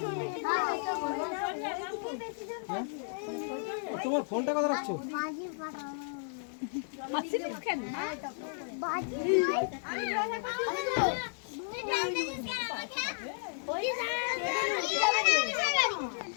তোমার ফোনটা কথা রাখছো?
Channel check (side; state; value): right; silent; digital silence